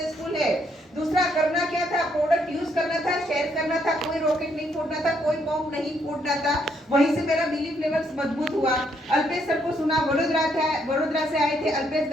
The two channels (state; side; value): normal; both; correlation 0.72